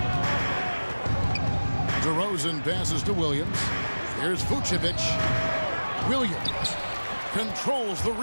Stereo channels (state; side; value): inverted; both; correlation -1.00